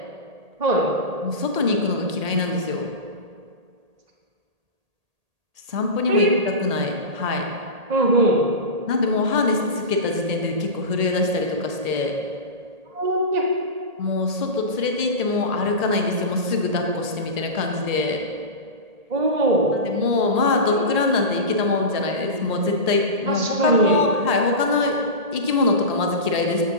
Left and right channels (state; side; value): late; left; 1.8 ms